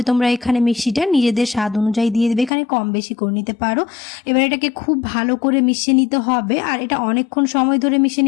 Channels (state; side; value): drops out; right; at 2.5 s